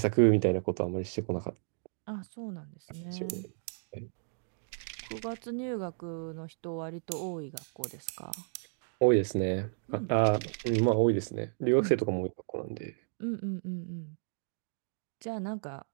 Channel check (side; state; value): left; silent; digital silence